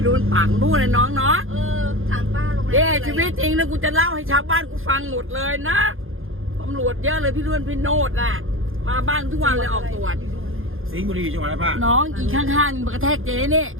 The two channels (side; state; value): left; late; 0.60 ms